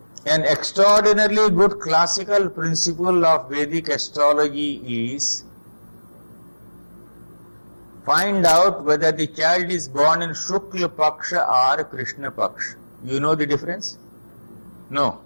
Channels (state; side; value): inverted; both; correlation -1.00